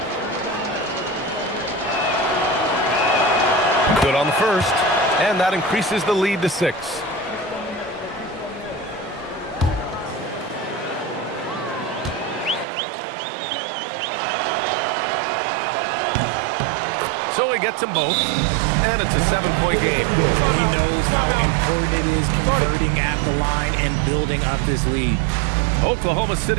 Good on the first, and that increases the lead to 6. So he gets them both, and it's a 7-point game. He knows how important it is converting at the line and building up this lead. Oklahoma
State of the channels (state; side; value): drops out; left; at 12.7 s